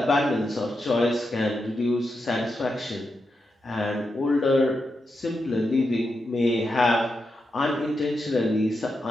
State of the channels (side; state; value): both; normal; correlation 0.86